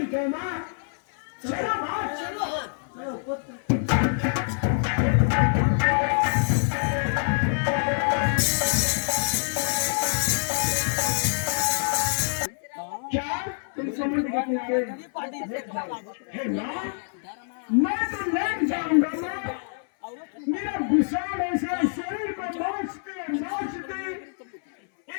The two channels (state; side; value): silent; right; 61 dB below the other